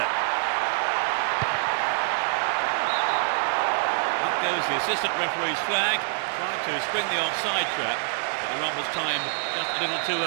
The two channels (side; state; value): left; silent; digital silence